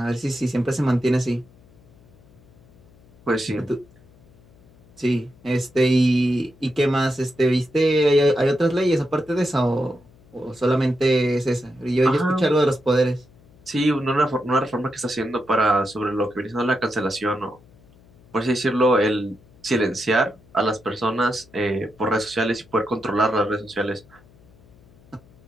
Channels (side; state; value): left; noise; hum, 28 dB below the sound